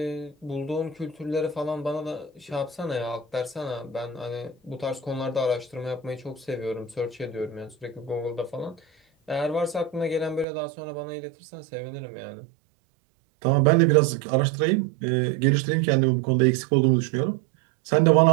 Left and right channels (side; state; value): left; drops out; at 10.5 s